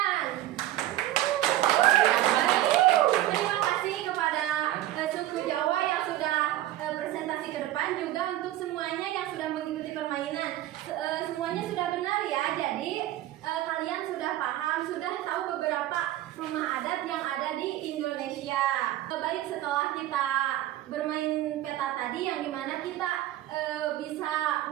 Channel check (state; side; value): quieter; left; 14.3 dB